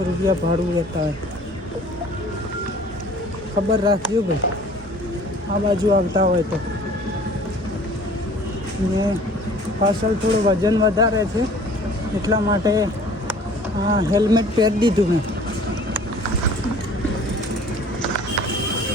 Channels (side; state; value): both; normal; correlation 0.50